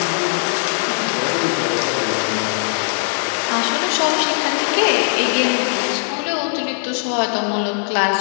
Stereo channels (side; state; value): right; silent; digital silence